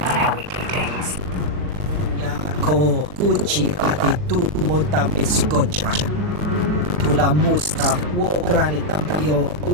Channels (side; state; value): left; late; 40 ms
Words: how we do things. Ko kuchi ati tu motame skocha. Tula musta wo granitampio